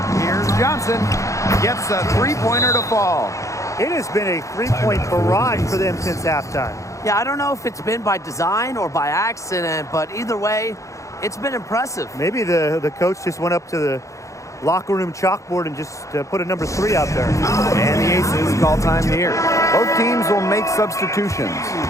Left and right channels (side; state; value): right; late; 0.15 ms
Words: Here's Johnson. Gets a three-pointer to fall. It has been a three-point barrage for them since halftime. Yeah, I don't know if it's been by design or by accident, but either way, it's been impressive. Maybe the coach just went up to the locker room chalkboard and just put a number 3 out there. And the Aces call time here. Both teams will make substitutions.